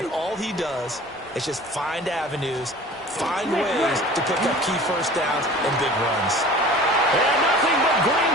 all he does is just find avenues, find ways to pick up key first downs and big runs. And nothing but green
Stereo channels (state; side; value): normal; both; correlation 0.43